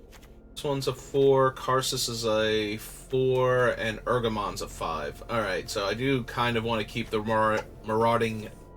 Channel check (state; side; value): identical; both; correlation 1.00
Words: This one's a 4, Karsus is a 4, and Urgamon's a 5. Alright, so I do kind of want to keep the Marauding